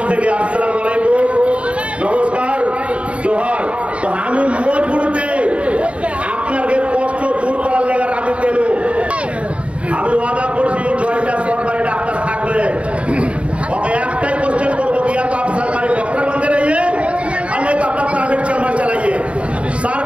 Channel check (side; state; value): left; late; 0.062 ms